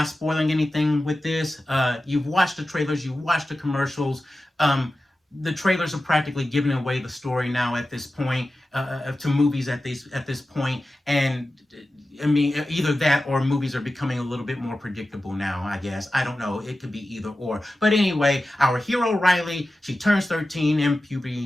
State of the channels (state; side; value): normal; both; correlation 0.94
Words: spoiling anything with this. You've watched the trailers, you've watched the commercials. The trailers are practically giving away the story now at this point, to movies at this point, and I mean, either that or movies are becoming a little bit more predictable now, I guess. I don't know. It could be either or. But anyway, our hero Riley, she turns 13 and